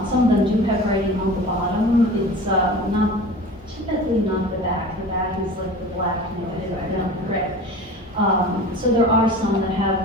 them do have writing on the bottom. It's not typically not the back. The back is like the black, correct. So there are some that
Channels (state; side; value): normal; both; correlation 0.37